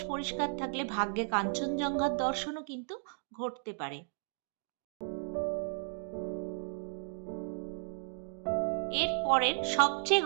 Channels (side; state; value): left; silent; 55 dB below the other